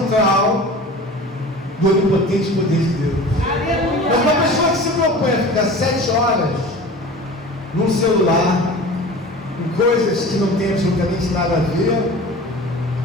do onipotente poder de Deus. Mas uma pessoa que se propõe a ficar 7 horas num celular, em coisas que não tem absolutamente nada a ver,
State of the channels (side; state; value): both; normal; correlation 0.38